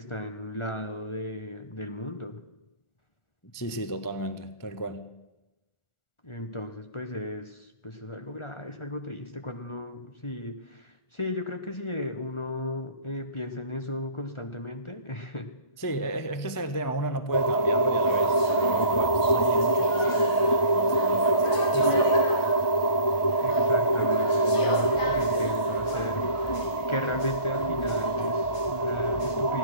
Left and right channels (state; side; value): late; right; 1.5 ms